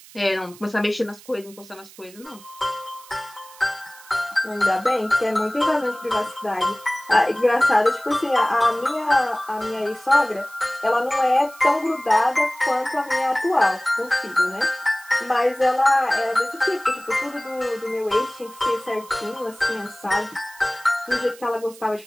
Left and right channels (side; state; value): right; noise; hiss, 21 dB below the sound